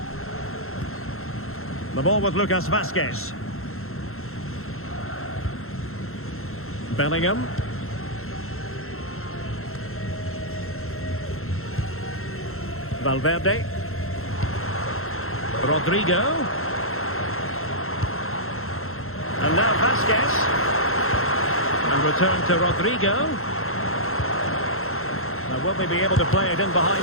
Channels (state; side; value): late; right; 0.62 ms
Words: The ball with Lucas Vazquez. Bellingham. Valverde. Rodrigo. And now Vazquez. And return to Rodrigo. Now will they be able to play it in